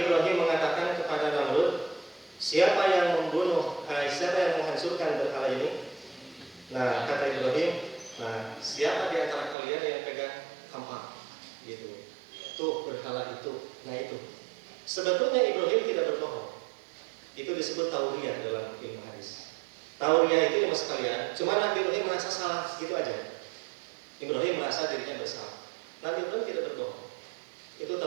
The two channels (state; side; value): drops out; left; at 9.6 s